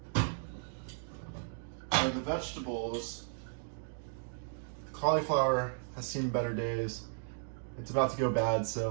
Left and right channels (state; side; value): silent; left; digital silence